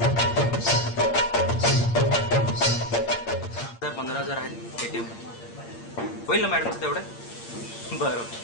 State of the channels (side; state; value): right; late; 8.7 ms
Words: 15,000 आहेत ATM. होईल ना मॅडमचं तेवढं? बरं